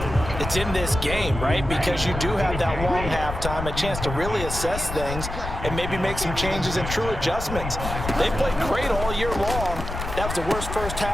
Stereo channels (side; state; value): left; noise; rumble, 6 dB below the sound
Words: it's in this game, right? Because you do have that long halftime, a chance to really assess things and maybe make some changes and true adjustments. They played great all year long. That was the worst first